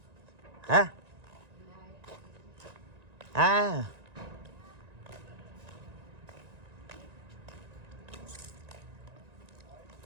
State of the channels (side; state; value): left; late; 1.9 ms